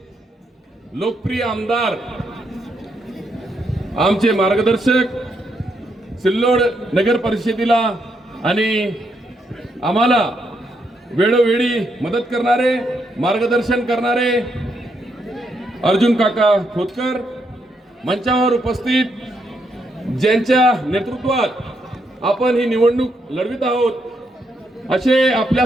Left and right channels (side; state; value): both; normal; correlation 0.78